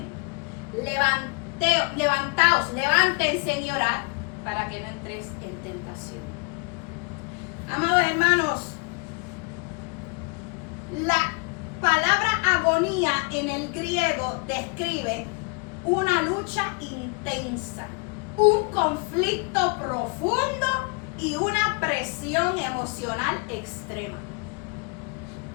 Levantaos, levántense y orad para que no entréis en tentación. Amados hermanos, la palabra agonía en el griego describe una lucha intensa, un conflicto profundo y una presión emocional extrema.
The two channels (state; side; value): quieter; right; 32.9 dB